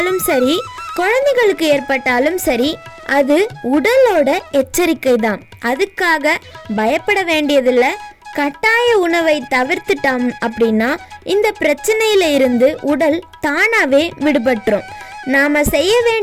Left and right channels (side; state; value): both; identical; correlation 1.00